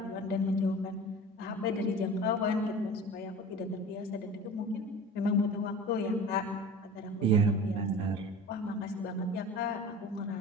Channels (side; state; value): both; normal; correlation 0.38